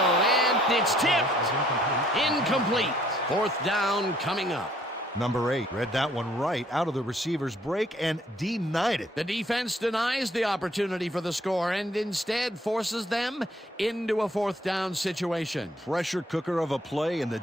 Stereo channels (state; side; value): normal; both; correlation 0.63